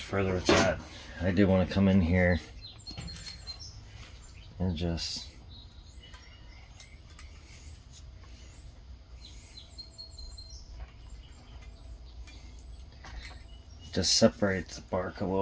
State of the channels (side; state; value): both; identical; correlation 1.00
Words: further with that, I do want to come in here and just separate the bark a